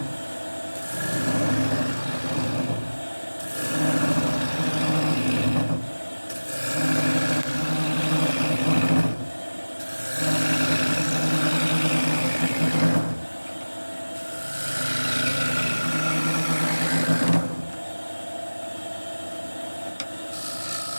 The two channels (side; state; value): both; inverted; correlation -1.00